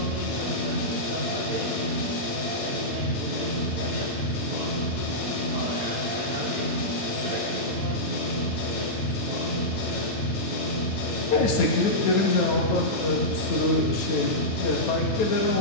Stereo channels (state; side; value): late; right; 9.2 ms